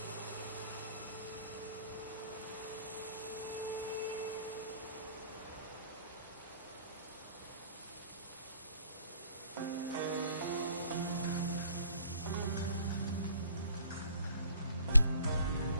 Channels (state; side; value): inverted; both; correlation -0.58